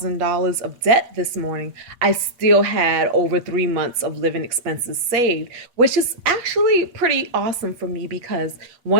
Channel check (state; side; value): late; left; 8.4 ms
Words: of debt this morning, I still had over 3 months of living expenses saved, which is actually pretty awesome for me because